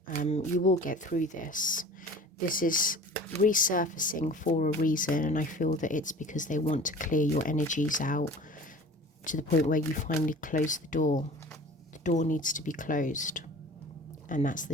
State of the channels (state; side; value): normal; both; correlation 0.42